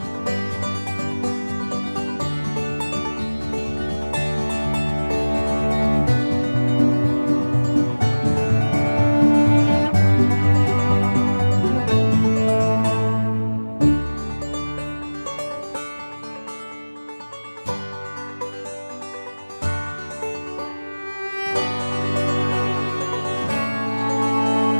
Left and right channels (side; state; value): both; inverted; correlation -1.00